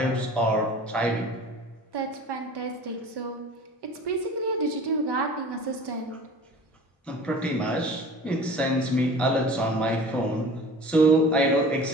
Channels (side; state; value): both; normal; correlation 0.42